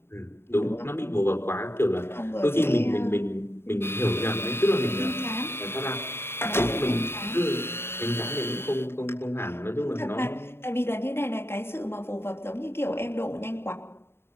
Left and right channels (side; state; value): right; late; 0.11 ms